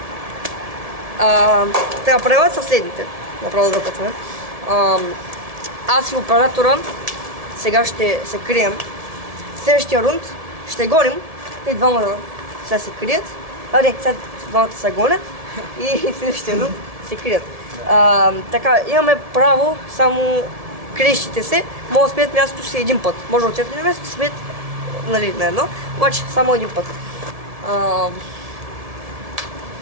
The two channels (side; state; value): left; late; 1.7 ms